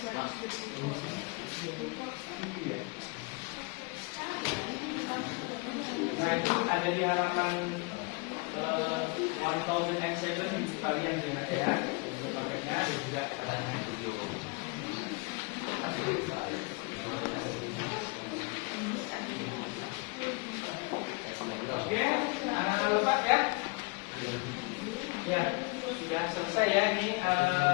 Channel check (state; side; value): quieter; right; 28.6 dB